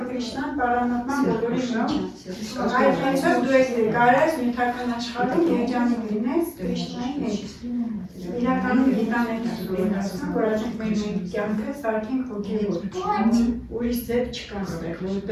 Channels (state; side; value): identical; both; correlation 1.00